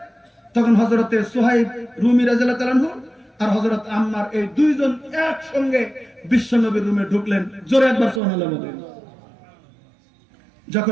তখন হযরতে সুহাইব রুমি রাদিয়াল্লাহু তাআলা আনহু আর হযরত আম্মার এই দুইজন একসঙ্গে বিশ্বনবীর রুমে ঢুকলেন। জোরে একবার সুবহানাল্লাহ বলেন।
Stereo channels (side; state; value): left; drops out; at 8.2 s